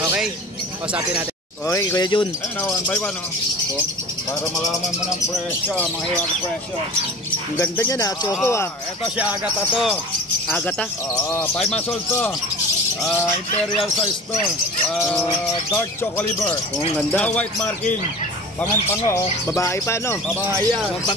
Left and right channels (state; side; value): normal; both; correlation 0.38